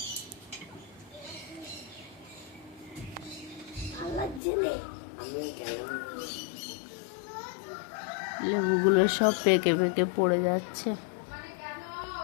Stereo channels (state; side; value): drops out; right; at 4.4 s